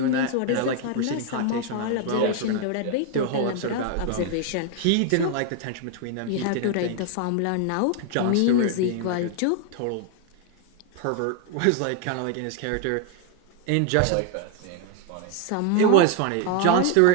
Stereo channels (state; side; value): different; both; correlation 0.00